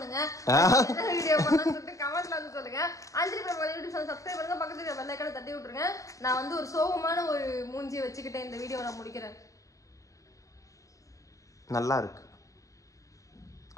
வீடியோ பண்ணணும்னு சொல்லிட்டு கமெண்ட்ல வந்து சொல்லுங்க. அஞ்சலி பிரபா யூடியூப் சேனல் சப்ஸ்கிரைப் பண்ணுங்க, பக்கத்துல பெல் ஐகானை தட்டி விட்டுருங்க. நான் வந்து ஒரு சோகமான ஒரு மூஞ்சியை வச்சுக்கிட்டு இந்த வீடியோவை நான் முடிக்கிறேன். நல்லா இருக்கு,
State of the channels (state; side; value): late; right; 0.16 ms